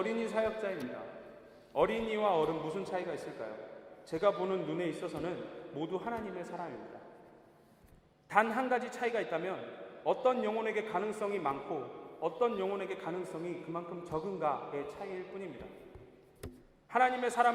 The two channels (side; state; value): both; identical; correlation 1.00